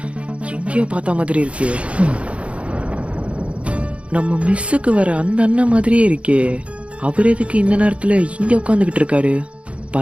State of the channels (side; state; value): left; late; 0.062 ms